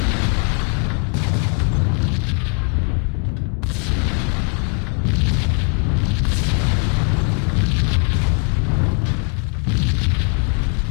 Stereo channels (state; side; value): quieter; right; 39.5 dB